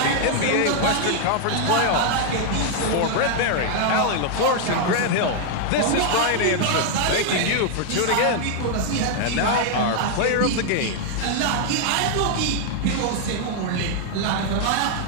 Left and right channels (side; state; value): both; different; correlation 0.00